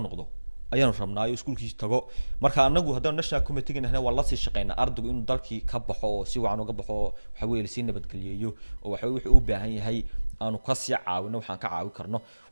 noqdo ayaanu rabnaa iskuulkiisa tago marka anagu haddaan national committee ganahay waa la sii shaqeynaa ardaygu inuu dalkii ka baxo oo si wacan uga baxo waxa weeye si nabadgeliyo oo waxa wuxuu u baahan yahay aanu ka sii caawino waxaan ka caawin karno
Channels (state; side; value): inverted; both; correlation -1.00